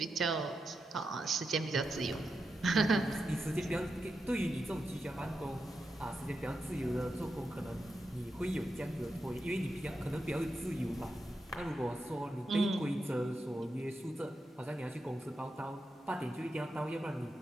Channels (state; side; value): normal; both; correlation 0.87